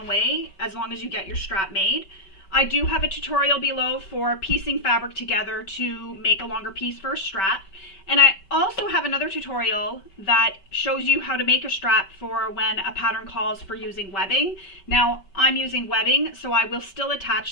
way as long as you get your strap made. I do have a tutorial below for piecing fabric together to make a longer piece for a strap. And I also have another tutorial that shows you how to make a strap for when a pattern calls for using webbing. Now, I'm using webbing, so I will still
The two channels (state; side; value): late; right; 5.2 ms